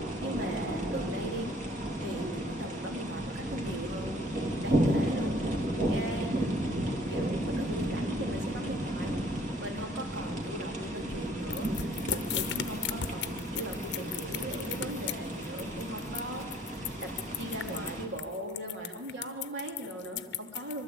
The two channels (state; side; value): normal; both; correlation 0.57